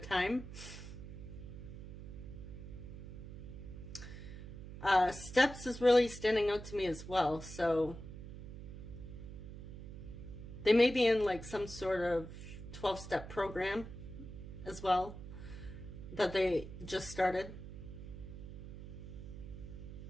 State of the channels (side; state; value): right; noise; hum, 11 dB below the sound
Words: Steps is really standing out to me as well. So they may be in like some sort of 12-step program as well that they just started.